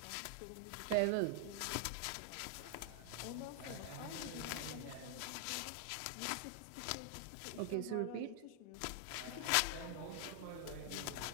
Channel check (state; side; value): different; both; correlation 0.00